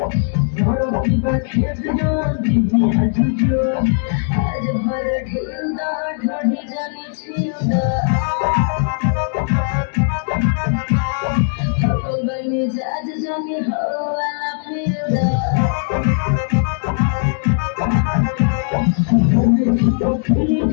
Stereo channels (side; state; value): right; silent; digital silence